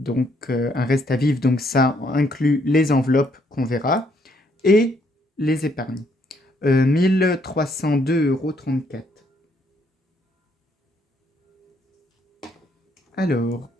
un reste à vivre, donc ça inclut les enveloppes qu'on verra et les épargnes. 1302,34 €. Alors,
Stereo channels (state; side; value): normal; both; correlation 0.70